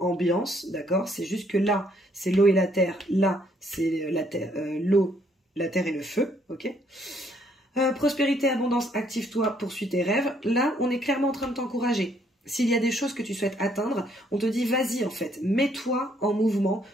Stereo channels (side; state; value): both; normal; correlation 0.68